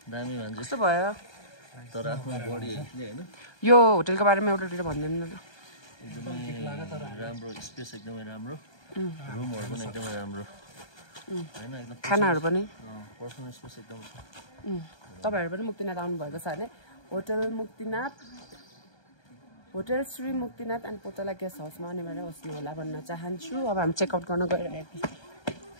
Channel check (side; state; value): right; late; 1.2 ms